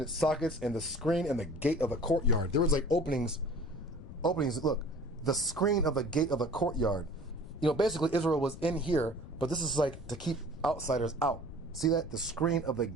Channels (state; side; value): noise; left; rumble, 14 dB below the sound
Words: sockets, and the screen and the gate of the courtyard. There was like openings. Look, the screen of the gate of the courtyard. You know, basically Israel was in here, but this is like to keep outsiders out. See that? The screen of the